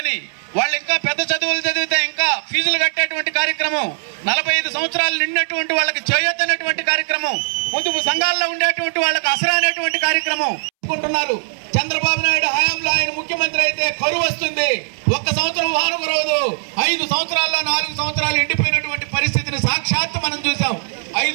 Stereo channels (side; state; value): left; silent; 66 dB below the other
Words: వాళ్ళు ఇంకా పెద్ద చదువులు చదివితే ఇంకా ఫీజులు కట్టేటువంటి కార్యక్రమం, 45 సంవత్సరాలు నిండినటువంటి వాళ్ళకి చేయొద్దనేటువంటి కార్యక్రమం, పొదుపు సంఘాల్లో ఉండేటువంటి వాళ్ళకి అసరా అనేటువంటి కార్యక్రమం అనుకుంటున్నారు. చంద్రబాబు నాయుడు హయాంలో ఆయన ముఖ్యమంత్రి అయితే కరువు వస్తుంది, 1 సంవత్సరం వాన కురవదు. 5 సంవత్సరాల్లో 4 సంవత్సరాలు ఎండిపోయినటువంటి పరిస్థితిని సాక్షాత్తు మనం చూసాం.